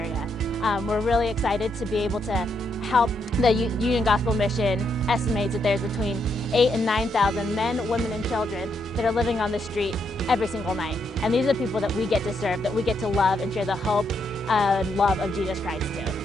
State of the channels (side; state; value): both; normal; correlation 0.78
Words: We're really excited to be able to help. The Union Gospel Mission estimates that there's between 8,000 and 9,000 men, women, and children that are living on the street every single night. And these are the people that we get to serve, that we get to love and share the hope and love of Jesus Christ to.